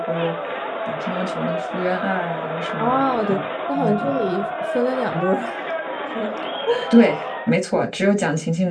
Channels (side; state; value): both; identical; correlation 1.00